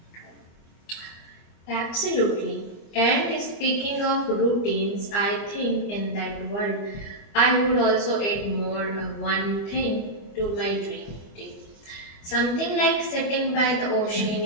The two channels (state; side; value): late; right; 24 ms